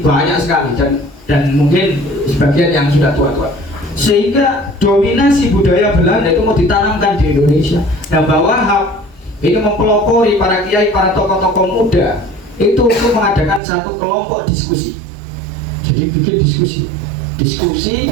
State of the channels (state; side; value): drops out; left; at 13.6 s